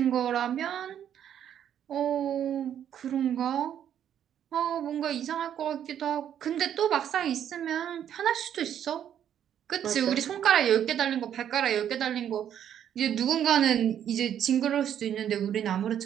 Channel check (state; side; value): quieter; left; 9.7 dB